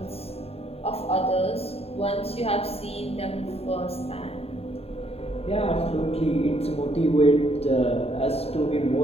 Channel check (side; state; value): right; late; 0.29 ms